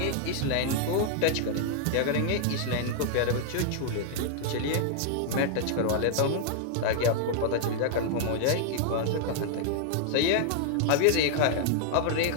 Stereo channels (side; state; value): both; different; correlation -0.01